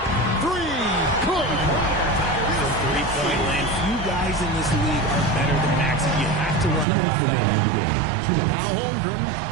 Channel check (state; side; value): drops out; left; at 6.9 s